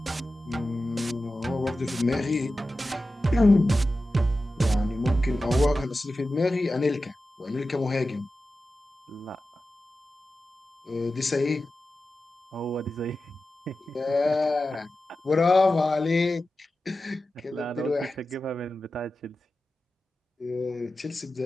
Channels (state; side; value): normal; both; correlation 0.93